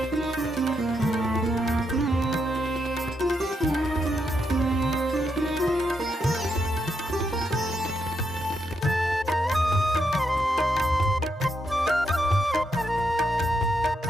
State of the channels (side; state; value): both; normal; correlation 0.81